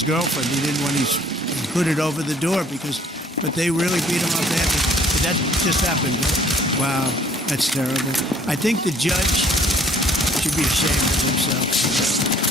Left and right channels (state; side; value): normal; both; correlation 0.58